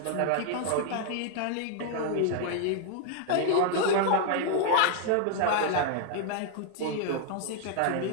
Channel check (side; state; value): both; different; correlation 0.00